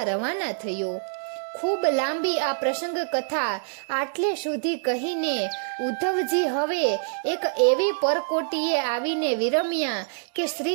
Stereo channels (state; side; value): silent; left; digital silence